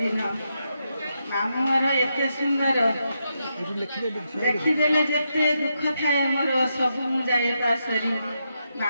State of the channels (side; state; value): both; inverted; correlation -0.83